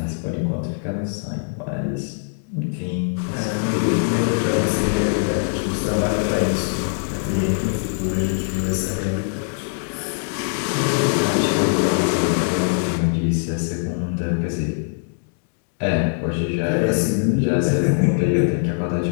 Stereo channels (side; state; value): right; silent; digital silence